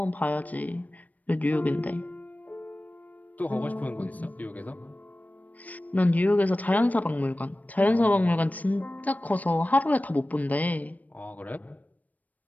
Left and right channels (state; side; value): late; right; 0.076 ms